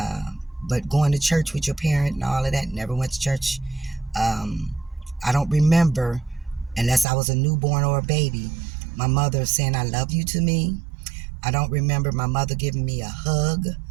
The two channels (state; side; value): drops out; left; at 7.1 s